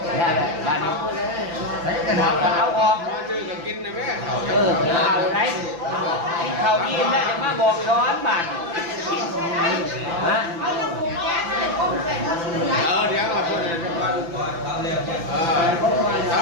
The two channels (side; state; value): left; late; 5.9 ms